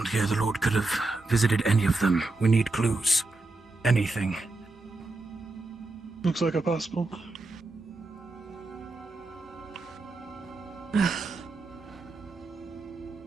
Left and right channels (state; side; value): quieter; left; 3.1 dB